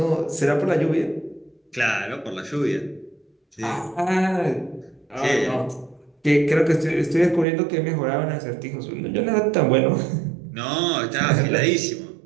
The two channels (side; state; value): left; drops out; at 7.5 s